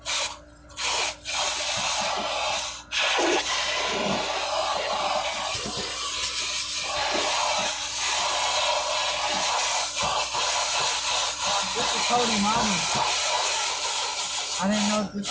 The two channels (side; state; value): both; identical; correlation 1.00